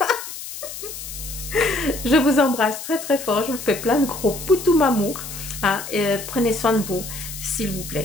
Je vous embrasse très fort. Je vous fais plein de gros poutous amour. Hein, et prenez soin de vous, s'il vous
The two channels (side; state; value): left; noise; hiss, 10 dB below the sound